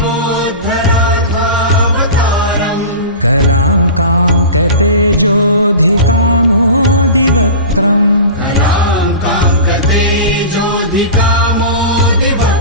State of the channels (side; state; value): both; inverted; correlation -0.31